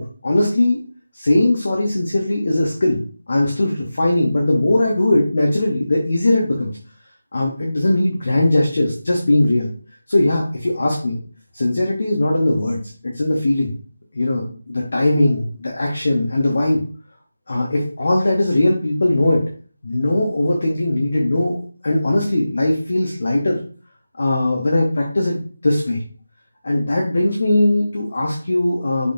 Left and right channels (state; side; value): inverted; both; correlation -0.94